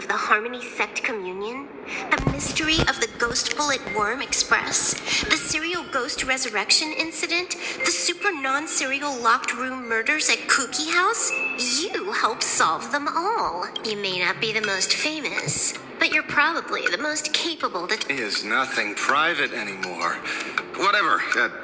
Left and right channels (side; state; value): both; identical; correlation 1.00